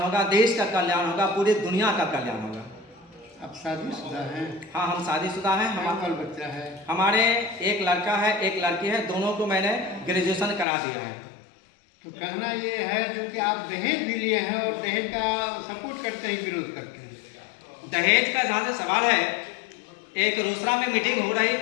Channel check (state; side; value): drops out; right; at 10.7 s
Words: देश का कल्याण होगा, पूरी दुनिया का कल्याण होगा। आप शादीशुदा हैं? हाँ, हम शादीशुदा हैं। हमारा बच्चा है? हमारे एक लड़का है, एक लड़की है। दोनों को मैंने ग्रेजुएशन करा दिया है। तो कहना ये है जो कि आप दहेज भी लिए हैं और दहेज का सपोर्ट करते हैं, विरोध करते हैं? दहेज का जहाँ से सवाल है, एक रोसड़ा में मीटिंग हो रही